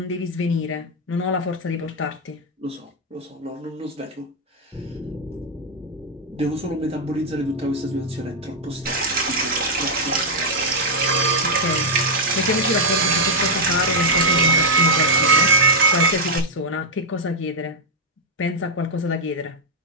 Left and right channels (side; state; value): both; normal; correlation -0.03